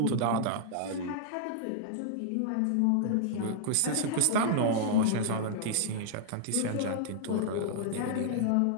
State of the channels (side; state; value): both; different; correlation -0.01